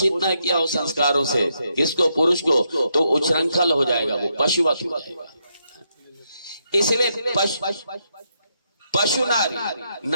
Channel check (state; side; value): inverted; both; correlation -0.79